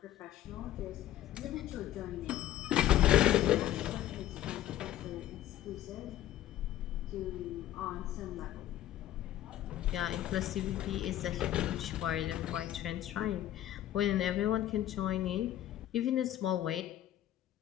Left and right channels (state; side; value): quieter; right; 13.0 dB